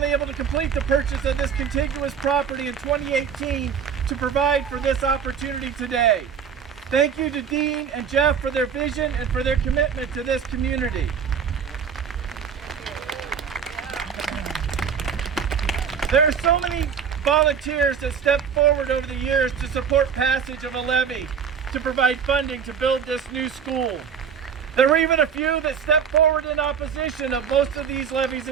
able to complete the purchase of this contiguous property in 2018 to provide for this opportunity today. Thank you to Dean and Jeff for their vision and for their commitment to this community. There are so many volunteers that stepped forward over the years to support passage of a levy to provide funding to build this new school. There were even a few that stepped forward in opposition of most of these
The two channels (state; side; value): quieter; left; 7.2 dB